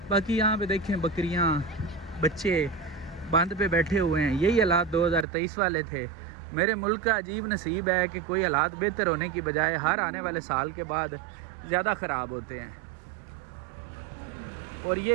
बाकी यहाँ पे देखें बकरियाँ, बच्चे बांध पे बैठे हुए हैं। यही हालात 2023 वाले थे। मेरे मुल्क का अजीब नसीब है कि कोई हालात बेहतर होने की बजाय हर आने वाले साल के बाद ज़्यादा ख़राब होते हैं। और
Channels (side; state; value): left; drops out; at 5.2 s